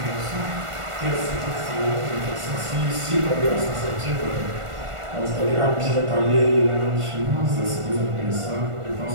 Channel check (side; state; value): left; late; 1.5 ms